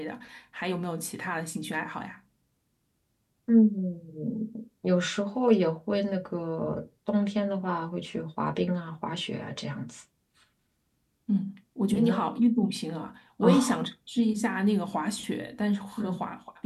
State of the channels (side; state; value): both; identical; correlation 1.00